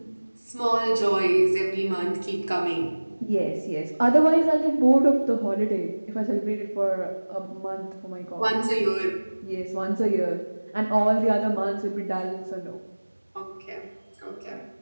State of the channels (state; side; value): inverted; both; correlation -1.00